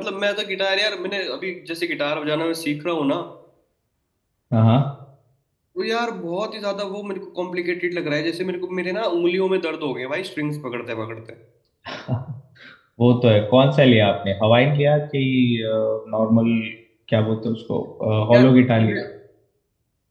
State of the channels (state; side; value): identical; both; correlation 1.00